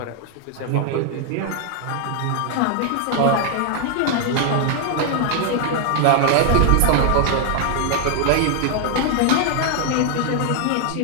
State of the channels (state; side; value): different; both; correlation 0.00